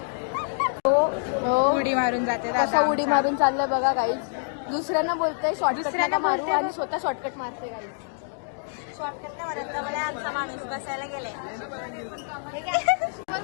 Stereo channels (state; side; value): silent; right; digital silence